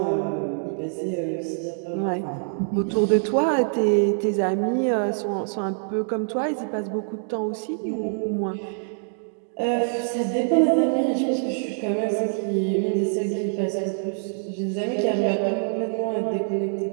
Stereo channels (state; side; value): silent; left; digital silence